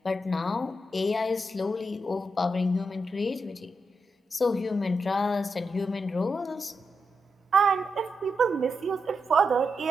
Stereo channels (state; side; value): normal; both; correlation 0.85